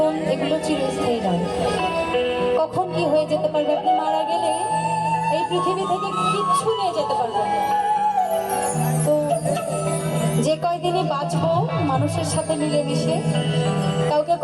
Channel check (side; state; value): both; identical; correlation 1.00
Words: এগুলো চিরস্থায়ী নয়। কখন কি হয়ে যেতে পারবে, আপনি মারা গেলে এই পৃথিবী থেকে কিচ্ছু নিয়ে যেতে পারবেন না। তো যে কয়দিনই বাঁচবো মানুষের সাথে মিলেমিশে, কাউকে